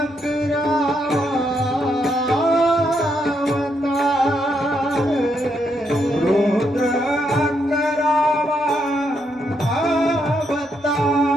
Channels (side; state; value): both; normal; correlation 0.78